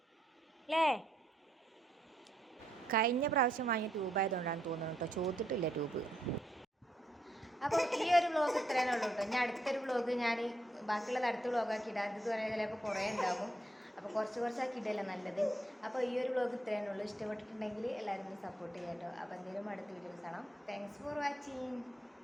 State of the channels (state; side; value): normal; both; correlation 0.76